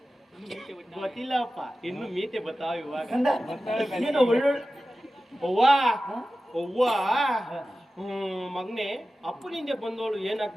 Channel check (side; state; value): both; normal; correlation 0.95